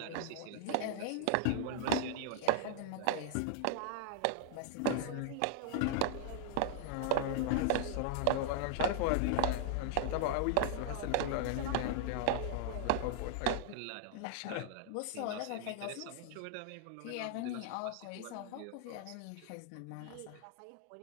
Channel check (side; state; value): both; different; correlation -0.01